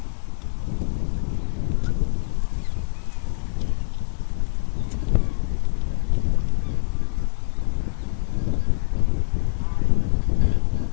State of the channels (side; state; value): right; silent; digital silence